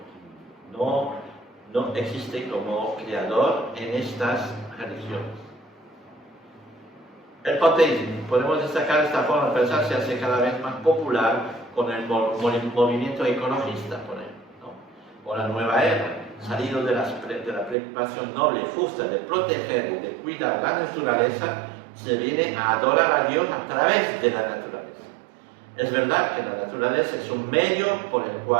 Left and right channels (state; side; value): drops out; left; at 17.8 s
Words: no existe como creador en estas religiones. El panteísmo, podemos destacar esta forma de pensar, se hace cada vez más popular con el movimiento ecologista, por ejemplo, ¿no? O la nueva era, salido de la preocupación noble y justa de proteger y de cuidar la naturaleza, se viene a adorar a Dios a través de la naturaleza. Es verdad que la naturaleza es un medio por el